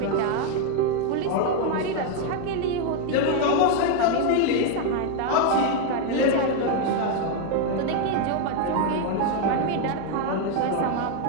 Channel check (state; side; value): different; both; correlation 0.01